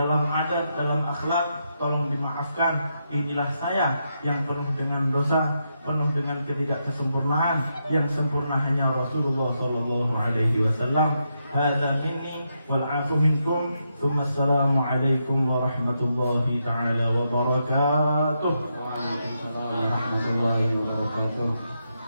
adat, dalam akhlak, tolong dimaafkan. Inilah saya yang penuh dengan dosa, penuh dengan ketidaksempurnaan. Yang sempurna hanya Rasulullah sallallahu alaihi wasallam. Hadza minni wal 'afu minkum. Assalamu alaikum warahmatullahi taala wabarakatuh. Waalaikumsalam warahmatullahi wabarakatuh.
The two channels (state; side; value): inverted; both; correlation -0.82